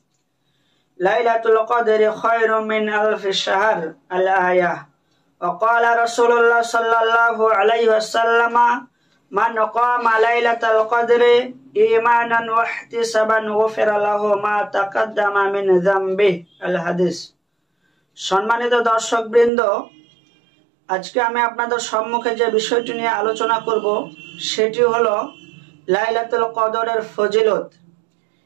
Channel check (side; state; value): left; drops out; at 19.5 s